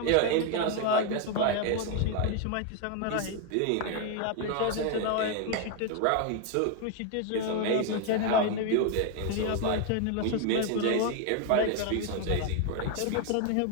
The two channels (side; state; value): both; different; correlation 0.01